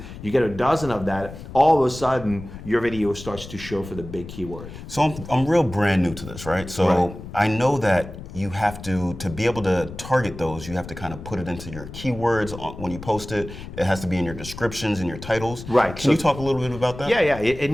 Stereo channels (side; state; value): left; noise; rumble, 12 dB below the sound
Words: you get a dozen of that. All of a sudden, your video starts to show for the big keyword. So I'm real brand new to this, right? So Right. I know that you have to be able to target those, you have to kind of put it into your keywords when you post it. It has to be in your descriptions and your titles. Right. Can you talk a little bit about that? Yeah. It